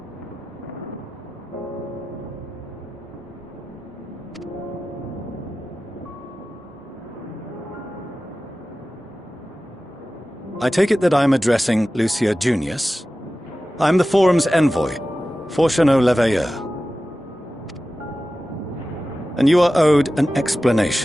I take it that I'm addressing Lucia Junius. I'm the Forum's envoy, Fortuneau Leveilleur. And you are owed an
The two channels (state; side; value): normal; both; correlation 0.95